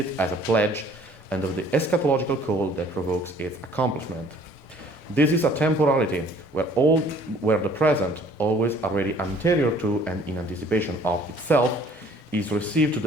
as a pledge and of the eschatological call that provokes its accomplishment. This is a temporality where the present, always already anterior to and in anticipation of itself, is received to the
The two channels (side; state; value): both; normal; correlation 0.55